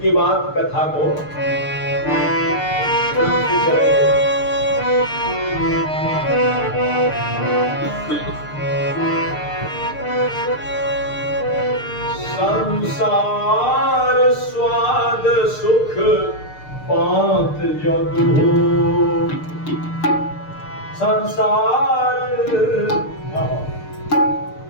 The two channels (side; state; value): right; late; 6.7 ms